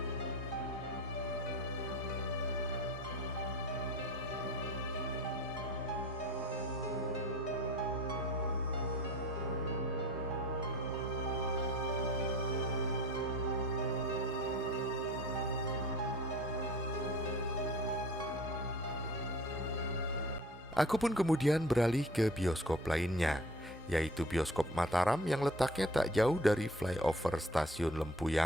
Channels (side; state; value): both; normal; correlation 0.43